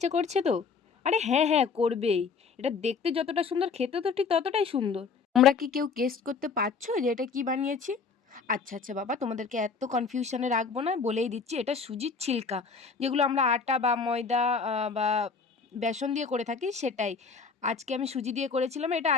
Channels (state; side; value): quieter; right; 5.2 dB